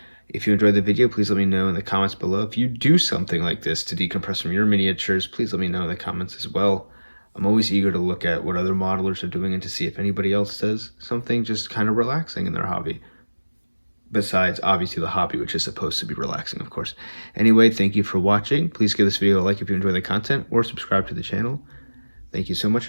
If you enjoyed the video, please let me know in the comments below. If you do something like this to decompress from your miniatures, please let me know in the comments as well. I'm always eager to look at what other modelers are doing and to see if anybody else does something just kind of relaxing in their hobby. Besides, obviously, the hobby, which is supposed to be relaxing, of course. Anyway, thank you for watching. Please give this video a like if you enjoy the content, or subscribe to the channel. Thank you so much,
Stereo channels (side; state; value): both; inverted; correlation -1.00